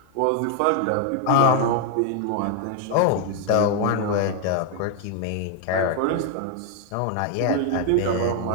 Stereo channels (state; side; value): different; both; correlation 0.00